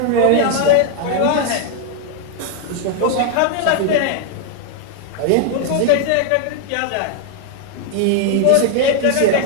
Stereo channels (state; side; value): different; both; correlation 0.00